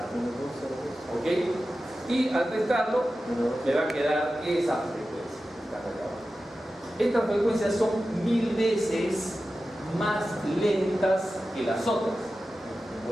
¿ok? Y al restarlo me va a quedar esa frecuencia. Estas frecuencias son 1000 veces más lentas que las otras,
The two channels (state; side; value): normal; both; correlation 0.94